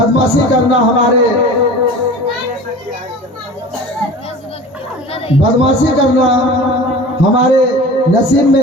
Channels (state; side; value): normal; both; correlation 0.38